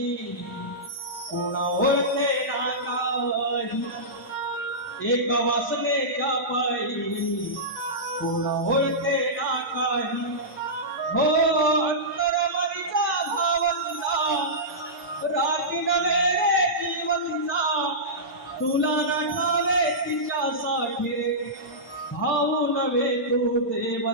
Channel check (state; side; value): normal; both; correlation -0.15